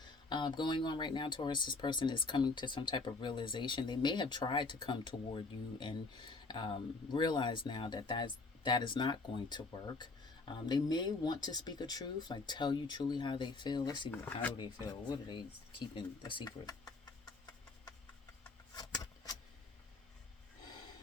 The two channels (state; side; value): quieter; right; 3.7 dB